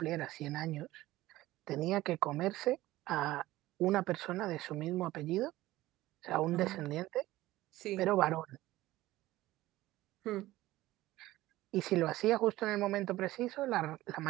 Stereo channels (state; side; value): quieter; left; 16.9 dB